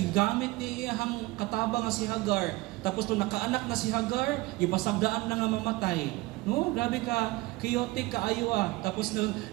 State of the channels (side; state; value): left; quieter; 20.9 dB